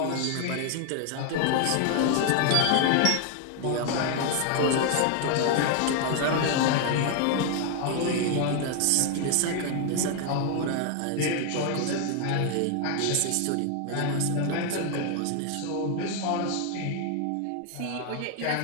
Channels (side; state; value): both; different; correlation 0.01